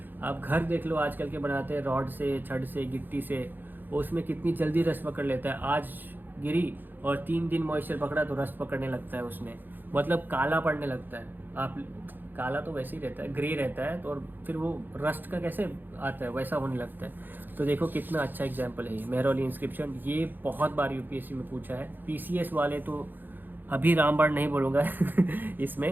आप घर देख लो आजकल के बनाते हैं रॉड से, छड़ से, गिट्टी से, उसमें कितनी जल्दी रस्ट पकड़ लेता है। आज गिरी और 3 दिन मॉइस्चर पकड़ा तो रस्ट पकड़ने लगता है उसमें, मतलब काला पड़ने लगता है। आप काला तो वैसे ही रहता है, ग्रे रहता है, तो और फिर वो रस्ट का कैसे आता है, वैसा होने लगता है। तो देखो कितना अच्छा एग्जाम्पल है ये मेहरौली इंस्क्रिप्शन। ये बहुत बार यूपीएससी में पूछा है। पीसीएस वाले तो अभी रामबाण नहीं बोलूँगा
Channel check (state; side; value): late; left; 0.090 ms